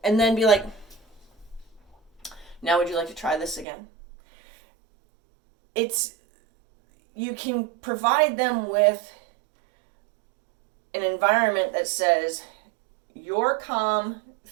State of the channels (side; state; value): left; drops out; at 3.7 s